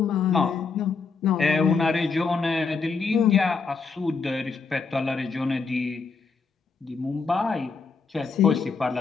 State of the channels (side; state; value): right; quieter; 4.8 dB